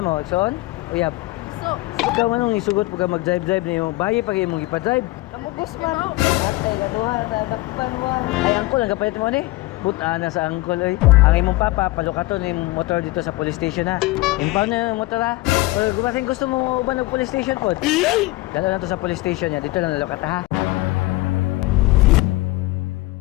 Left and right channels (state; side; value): quieter; right; 20.5 dB